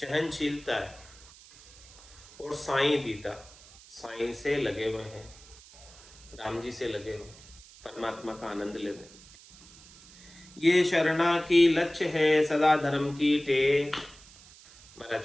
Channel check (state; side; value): noise; right; hiss, 22 dB below the sound